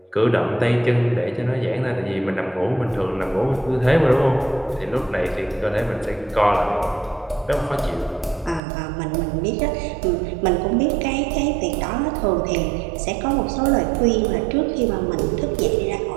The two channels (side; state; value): left; drops out; at 8.6 s